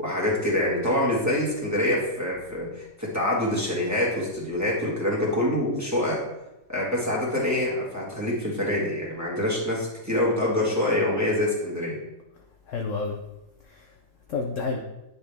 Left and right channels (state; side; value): normal; both; correlation -0.08